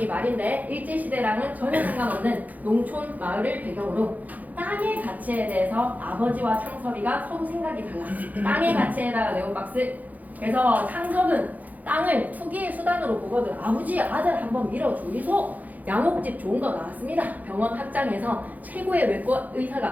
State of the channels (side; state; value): left; late; 0.080 ms